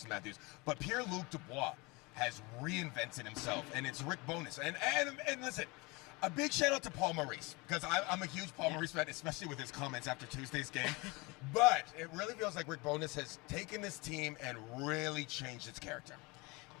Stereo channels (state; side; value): quieter; right; 26.1 dB